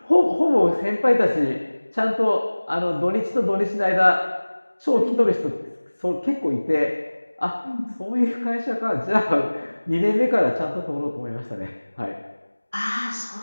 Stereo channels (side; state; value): both; inverted; correlation -1.00